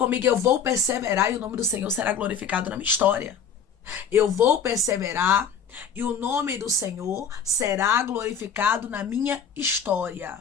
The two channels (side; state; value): right; quieter; 6.5 dB